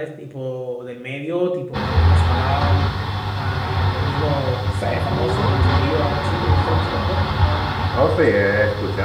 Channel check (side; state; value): both; identical; correlation 1.00